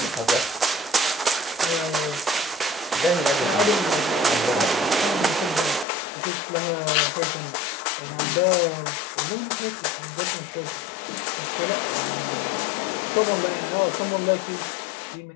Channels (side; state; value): right; drops out; at 5.9 s